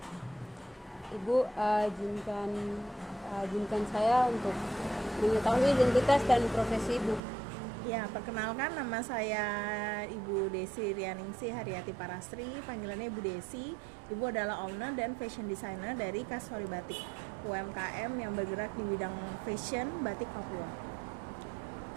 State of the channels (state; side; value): drops out; left; at 7.2 s